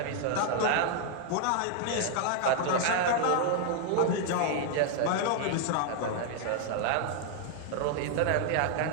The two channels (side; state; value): both; different; correlation 0.00